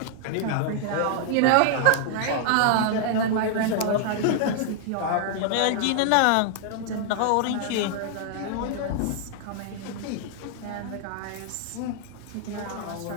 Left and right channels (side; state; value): both; different; correlation -0.01